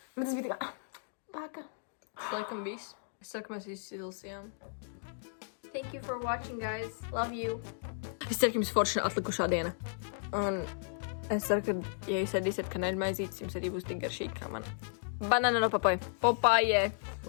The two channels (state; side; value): silent; right; digital silence